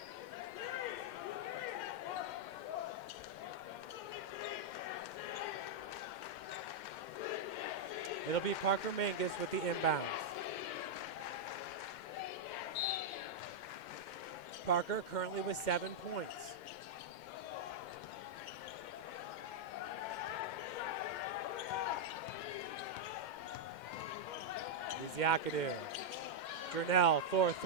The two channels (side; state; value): right; late; 2.1 ms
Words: It'll be Parker Mangus with the inbounds. Parker currently with 7 points. Iziakadu. Jernell,